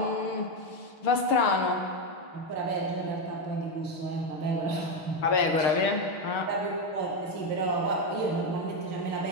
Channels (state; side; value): late; right; 6.7 ms